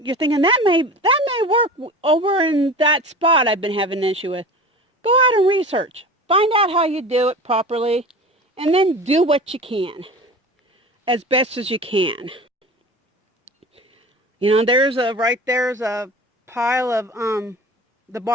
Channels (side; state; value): both; normal; correlation 0.36